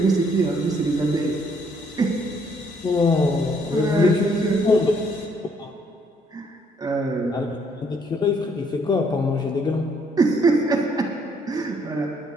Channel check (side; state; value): both; normal; correlation 0.67